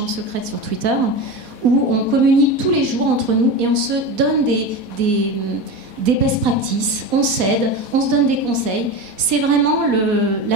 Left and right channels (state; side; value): late; left; 4.1 ms